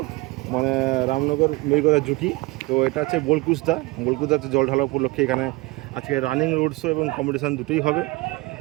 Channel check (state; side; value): quieter; left; 22.4 dB